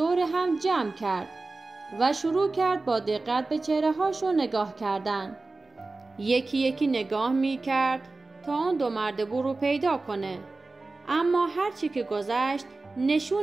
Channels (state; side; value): quieter; left; 3.4 dB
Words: هم جمع کرد و شروع کرد با دقت به چهره هاشون نگاه کردن. یکی یکی نگاه می کرد تا اون دو مرد بور رو پیدا کنه، اما هرچی که گذشت